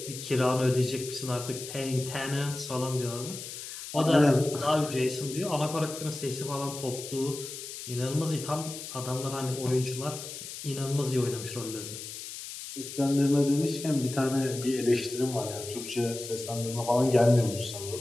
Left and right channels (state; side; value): noise; left; hiss, 10 dB below the sound